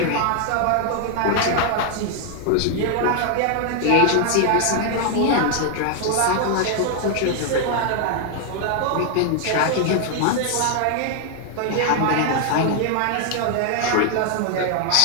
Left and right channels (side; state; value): both; different; correlation 0.00